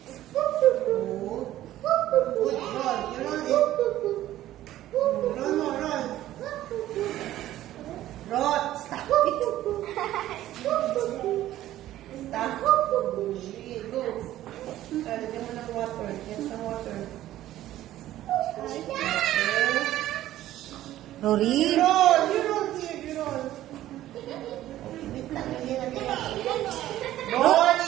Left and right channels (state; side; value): quieter; left; 13.9 dB